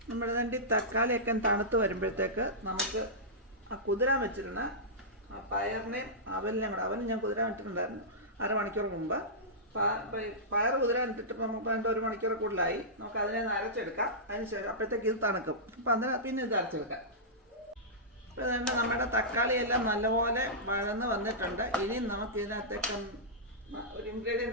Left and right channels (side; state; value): both; normal; correlation -0.15